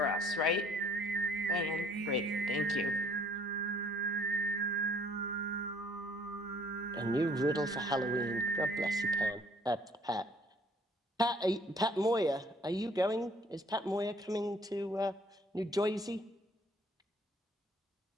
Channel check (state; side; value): normal; both; correlation 0.59